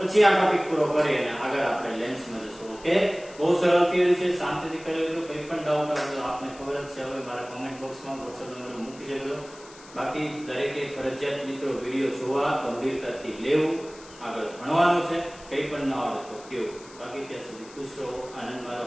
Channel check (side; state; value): left; noise; hiss, 21 dB below the sound